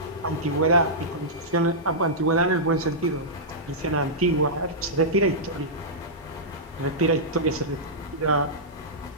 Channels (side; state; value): both; normal; correlation -0.13